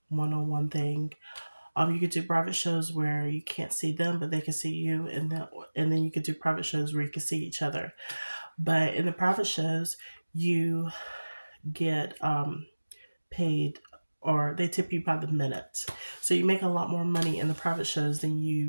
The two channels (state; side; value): inverted; both; correlation -1.00